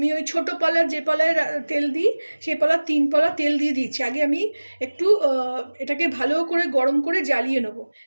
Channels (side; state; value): both; inverted; correlation -1.00